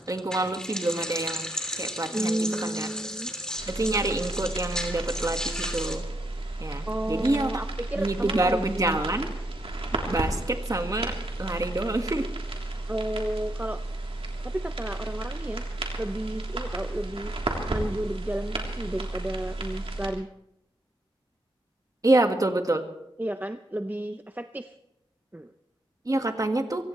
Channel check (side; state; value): both; normal; correlation 0.77